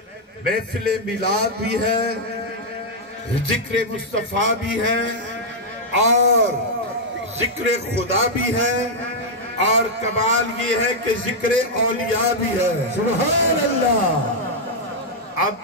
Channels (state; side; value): normal; both; correlation -0.03